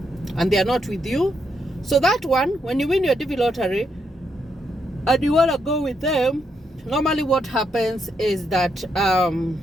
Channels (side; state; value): both; normal; correlation 0.79